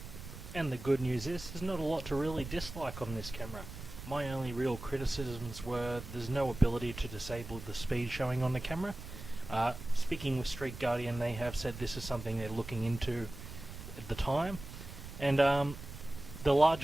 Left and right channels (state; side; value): noise; right; rumble, 12 dB below the sound